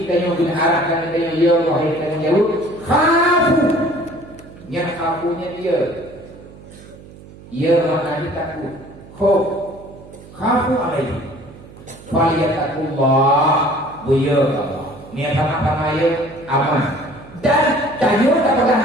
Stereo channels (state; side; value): noise; right; hum, 19 dB below the sound